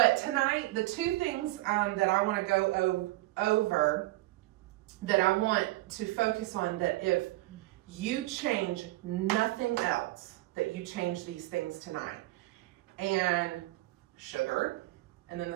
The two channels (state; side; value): quieter; left; 19.1 dB